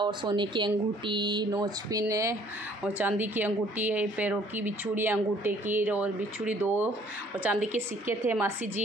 सोने की अंगूठी, नोच पिन और चांदी की अंगूठी है, पैरों की बिछुड़ी अंगूठे की, और बिछुड़ी 2, और चांदी के सिक्के थे। मासी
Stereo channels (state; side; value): normal; both; correlation 0.59